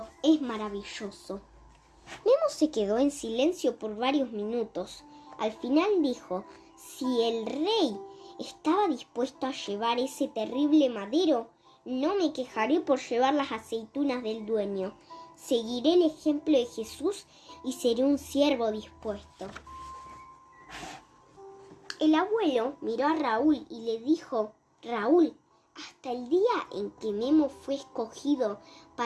es maravilloso. Nemo se quedó en silencio por varios minutos. Al final dijo, si el rey estaba dispuesto a llevar ese terrible madero, no me quejaré por llevar las aceitunas del dueño. Seguiré el ejemplo de Jesús y seré un siervo dispuesto. El abuelo miró a Raúl y le dijo, Raúl, hasta el día en que Nemo fue escogido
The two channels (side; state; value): both; identical; correlation 1.00